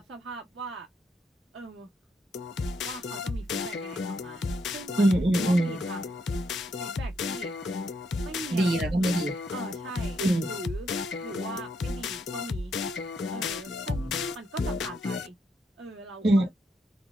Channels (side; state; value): both; normal; correlation 0.77